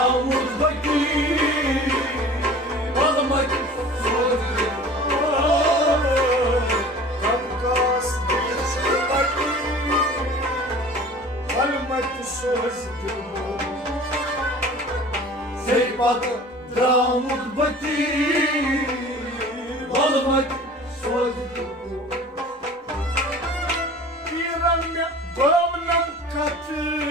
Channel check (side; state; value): both; normal; correlation 0.43